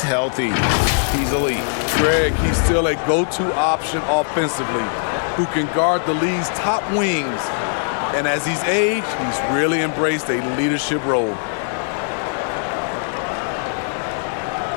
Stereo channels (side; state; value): right; silent; digital silence